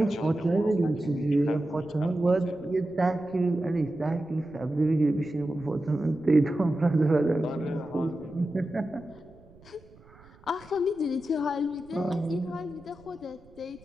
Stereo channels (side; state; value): right; noise; rumble, 25 dB below the sound